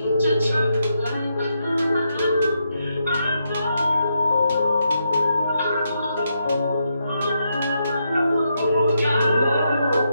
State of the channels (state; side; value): inverted; both; correlation -0.81